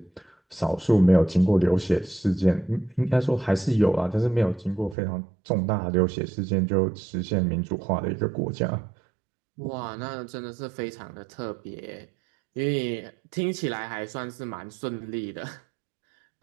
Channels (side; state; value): left; drops out; at 5.0 s